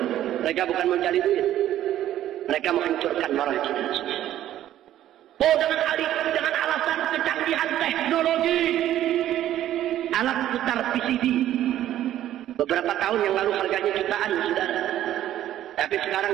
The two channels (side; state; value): left; quieter; 12.4 dB